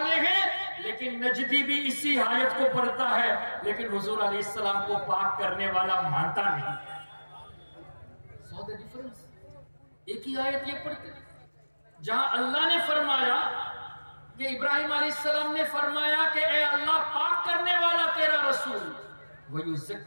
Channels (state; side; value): inverted; both; correlation -1.00